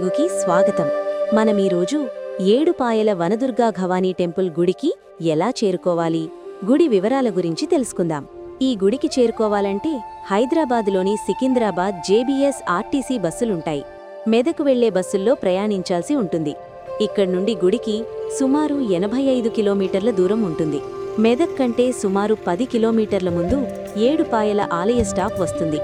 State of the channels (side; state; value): both; identical; correlation 1.00